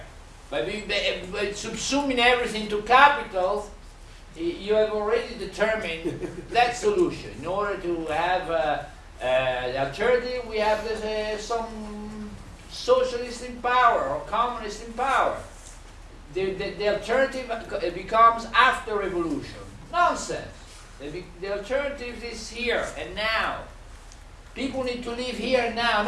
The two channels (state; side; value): identical; both; correlation 1.00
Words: but by subsuming everything to capital, you have already determined that solution. In order to have the alternative, we have some socialist in power or communist in power. The alternative becomes after revolution. Nonsense. The alternative is here and now. People need to live here and now,